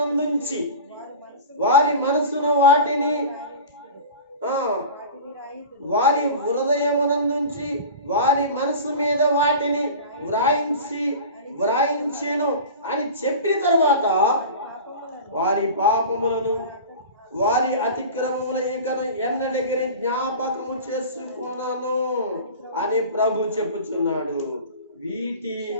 వారి మనసును వారి మనసు మీద వాటిని వ్రాయించి వ్రాయించెను అని చెప్పిన తర్వాత వారి పాపములను వారి అతిక్రమముల ఇకను ఎన్నడగిరి జ్ఞాపకము చేసుకున్నాను అని ప్రభు చెప్పుచున్నాడు. వీటి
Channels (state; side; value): inverted; both; correlation -0.35